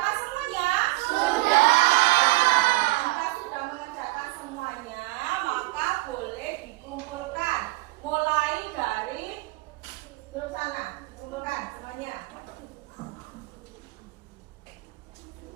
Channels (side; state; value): left; quieter; 21.6 dB